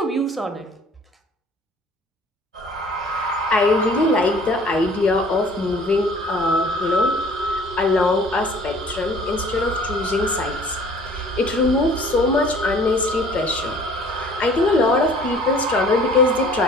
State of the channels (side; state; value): both; normal; correlation 0.51